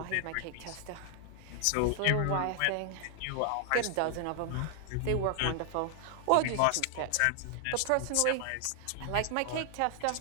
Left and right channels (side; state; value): both; different; correlation 0.00